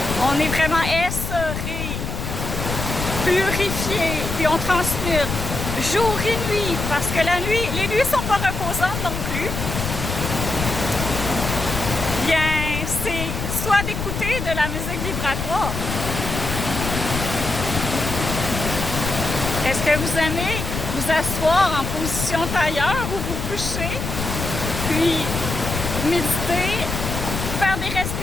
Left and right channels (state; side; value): noise; left; rumble, 4 dB below the sound